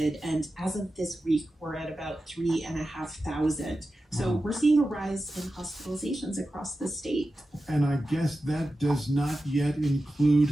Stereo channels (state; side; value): normal; both; correlation 0.92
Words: and as of this week, we're at about 3,500. So we're seeing a rise in hospitalizations across the state. And I guess that does not yet